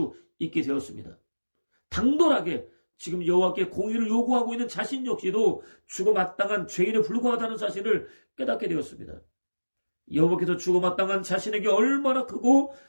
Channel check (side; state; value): both; inverted; correlation -1.00